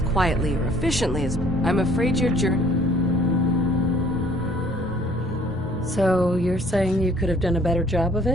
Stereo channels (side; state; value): both; normal; correlation 0.57